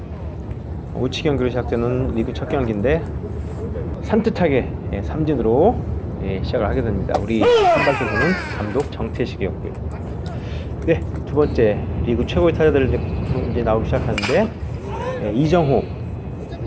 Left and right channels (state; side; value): identical; both; correlation 1.00